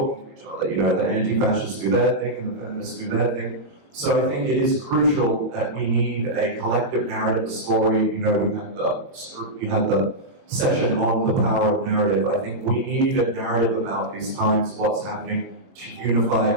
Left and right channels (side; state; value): left; late; 22 ms